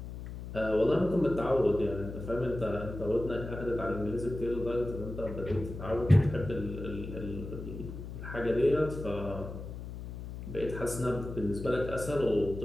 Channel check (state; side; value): noise; left; hum, 9 dB below the sound